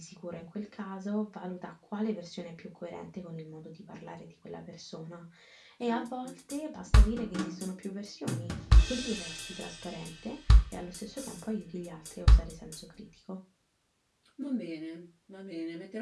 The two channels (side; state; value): both; identical; correlation 1.00